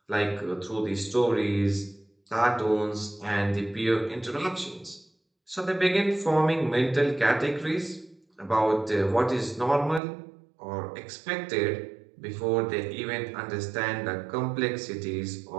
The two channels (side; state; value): left; drops out; at 10.0 s